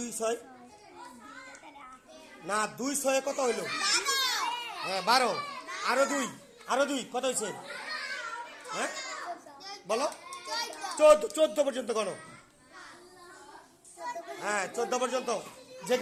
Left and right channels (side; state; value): both; identical; correlation 1.00